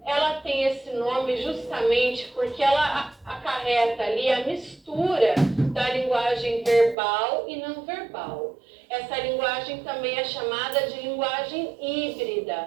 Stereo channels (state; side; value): drops out; left; at 7.0 s